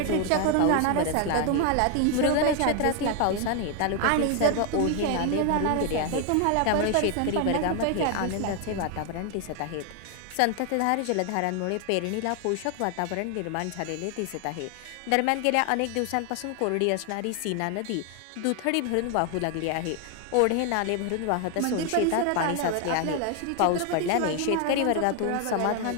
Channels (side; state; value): both; different; correlation 0.01